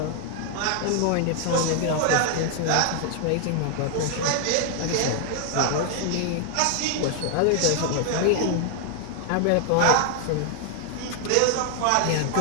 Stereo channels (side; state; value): both; different; correlation 0.00